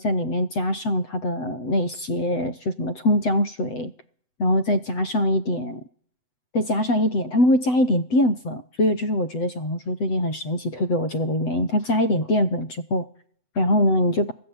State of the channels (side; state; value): right; late; 8.0 ms